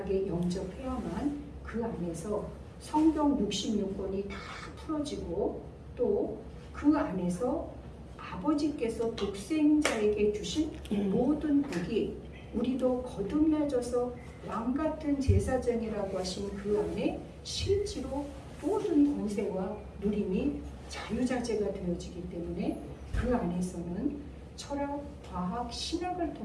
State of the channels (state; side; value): identical; both; correlation 1.00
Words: 영접해야만 그 안에서 성경 66권이 다 풀어지고 또 그 안에서 아버지께서 독생자에게 주신 모든 복이 우리도 거듭나져서 왕 같은 제사장이라고 하신 그 안에 실제로 모든 권세와 누림이 자유자재가 되어지기 때문에 그 안에서는 철학, 과학, 신학을